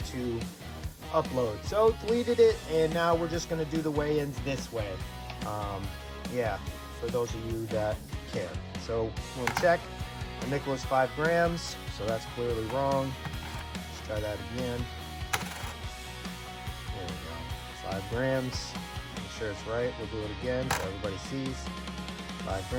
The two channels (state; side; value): identical; both; correlation 1.00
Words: to upload. So deleted it, and now we're just going to do the weigh-ins this way. Yeah, for those of you that care. So we'll check. My nickel is 5 grams, so that's clearly wrong. Let's try that again. There we go. 5 grams. Make sure it's right. We'll do it again so everybody sees. 5